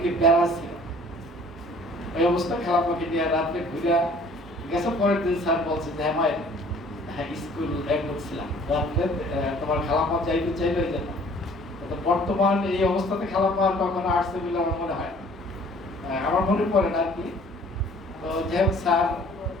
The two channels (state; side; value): normal; both; correlation 0.54